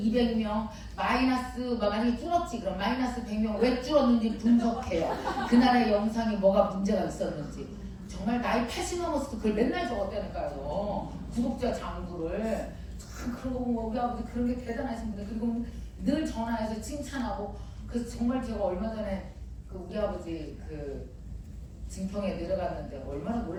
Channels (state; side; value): identical; both; correlation 1.00